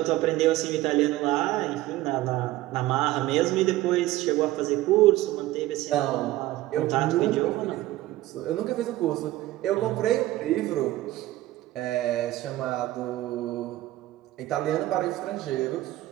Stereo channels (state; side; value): quieter; left; 16.3 dB